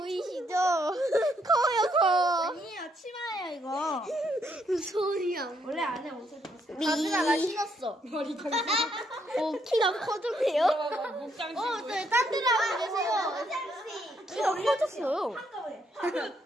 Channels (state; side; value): normal; both; correlation 0.73